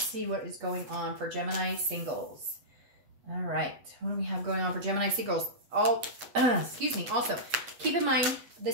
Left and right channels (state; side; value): late; left; 8.2 ms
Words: see what is going on for Gemini singles. All right, what do we have going on for Gemini singles? Excuse me. Also, keep in mind,